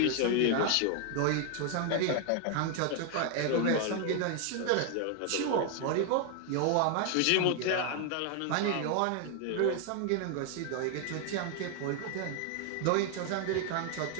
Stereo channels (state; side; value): different; both; correlation 0.00